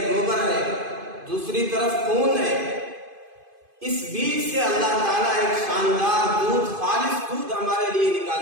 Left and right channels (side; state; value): left; late; 2.5 ms